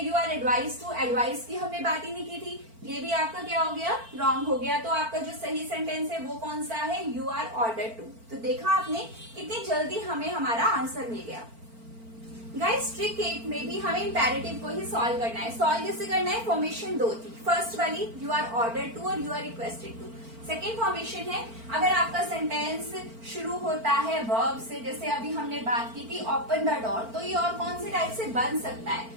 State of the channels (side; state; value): left; late; 4.4 ms